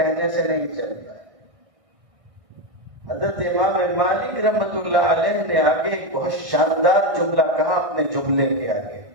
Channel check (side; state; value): left; late; 1.6 ms